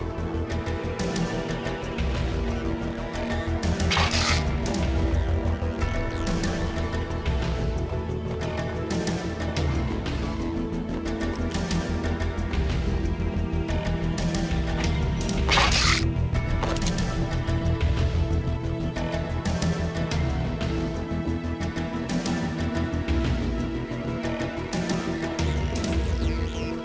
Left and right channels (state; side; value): identical; both; correlation 1.00